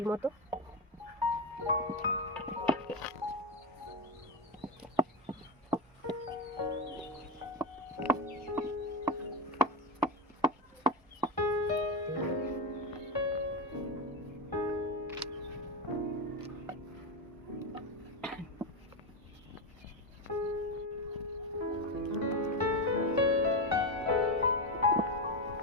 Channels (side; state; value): both; normal; correlation 0.12